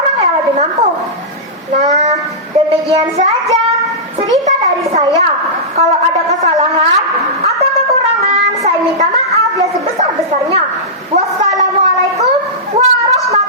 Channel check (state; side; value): normal; both; correlation -0.15